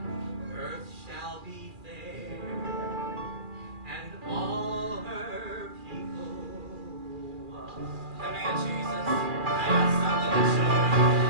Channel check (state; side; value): late; left; 2.4 ms